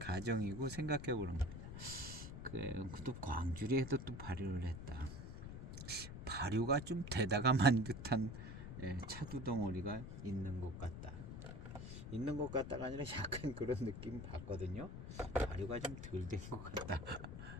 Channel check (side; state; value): left; noise; rumble, 9 dB below the sound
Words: 생각해 보는 겁니다. 또 광주리에도 또 발효를 했다. 발효가 좀 되다가만 듯한 차두 덩어리가 있는 것 같다. 있는 것 같다가 아니라 약간 그런 느낌 받거든요. 발효가 좀 덜 된 것 같다.